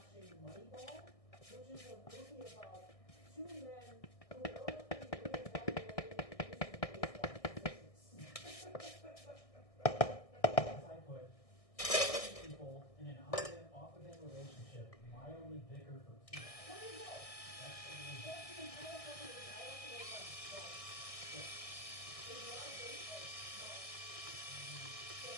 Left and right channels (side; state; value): right; late; 1.6 ms